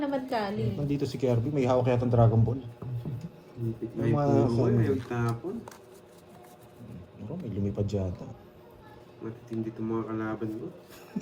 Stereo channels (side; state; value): both; identical; correlation 1.00